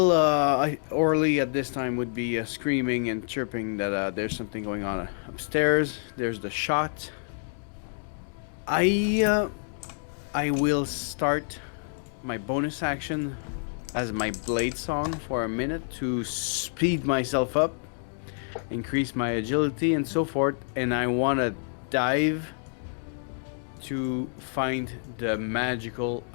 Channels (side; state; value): right; silent; digital silence